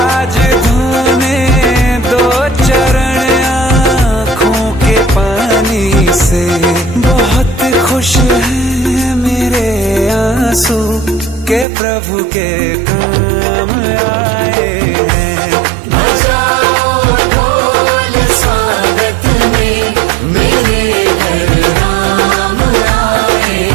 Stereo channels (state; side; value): drops out; left; at 11.7 s